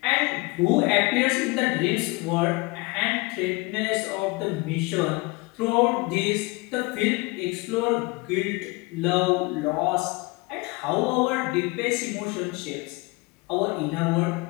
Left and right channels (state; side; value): quieter; right; 25.1 dB